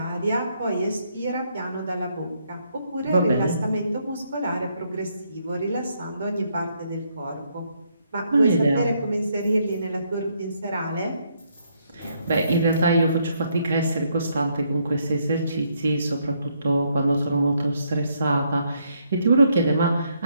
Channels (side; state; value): both; inverted; correlation -0.74